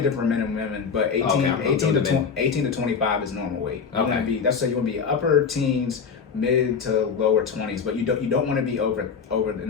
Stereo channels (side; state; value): right; quieter; 6.0 dB